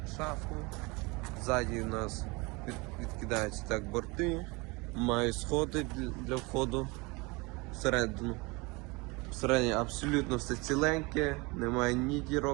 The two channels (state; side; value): quieter; left; 26.2 dB